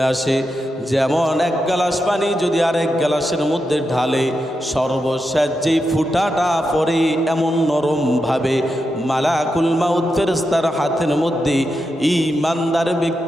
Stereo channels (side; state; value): both; normal; correlation 0.87